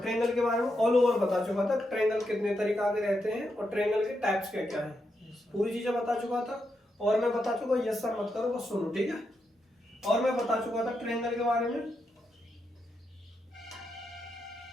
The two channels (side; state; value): both; normal; correlation 0.84